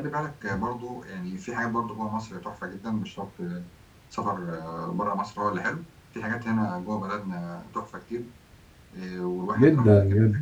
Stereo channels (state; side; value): identical; both; correlation 1.00